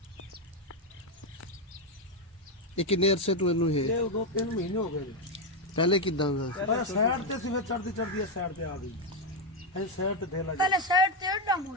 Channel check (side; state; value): both; normal; correlation 0.06